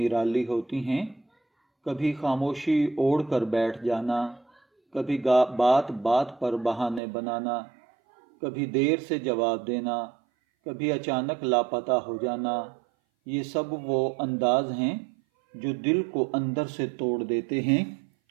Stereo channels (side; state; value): left; drops out; at 7.0 s